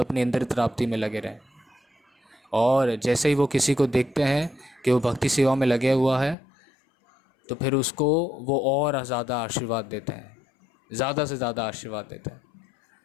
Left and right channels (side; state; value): right; drops out; at 6.4 s